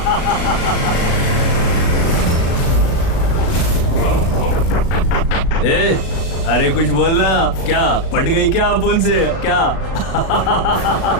ए, अरे कुछ बोलना। क्या पट गई क्या अपुन से? क्या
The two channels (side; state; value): right; late; 37 ms